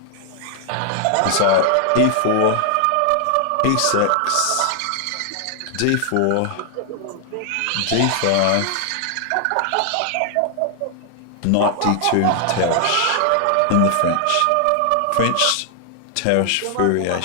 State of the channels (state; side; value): different; both; correlation 0.00